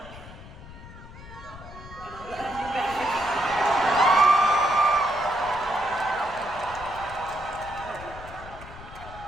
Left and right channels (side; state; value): left; noise; rumble, 16 dB below the sound